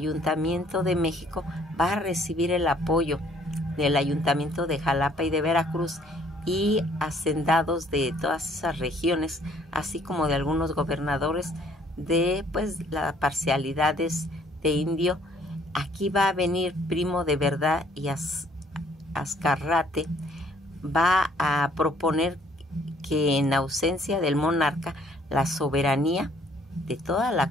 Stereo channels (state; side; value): normal; both; correlation 0.62